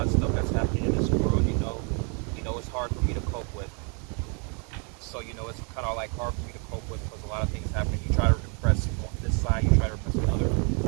of stuff that's happening in this world, it's hard for me to cope with. So, it's kind of like hard for me to cope with because a lot of things happen. You try to repress this side, you try to repress another.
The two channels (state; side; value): quieter; left; 37.2 dB